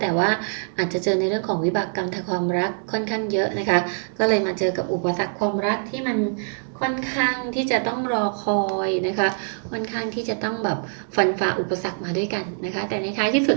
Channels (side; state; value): left; silent; 63 dB below the other